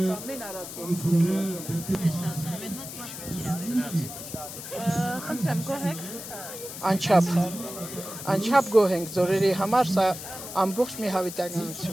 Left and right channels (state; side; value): noise; left; hiss, 10 dB below the sound